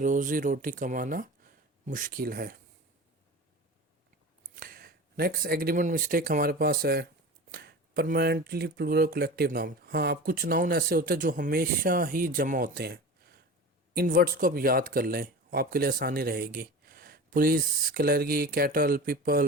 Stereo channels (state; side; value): normal; both; correlation 0.33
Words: रोटी कमाना मुश्किल है। नेक्स्ट एग्रीमेंट मिस्टेक हमारे पास है परमानेंटली प्लूरल कलेक्टिव नाउन। हाँ, अब कुछ नाउन ऐसे होते हैं जो हमेशा ही जमा होते हैं। इन वर्ड्स को आप याद कर लें, आपके लिए आसानी रहेगी। Police, clergy, cattle,